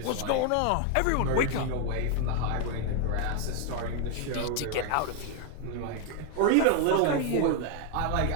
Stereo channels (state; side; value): different; both; correlation 0.01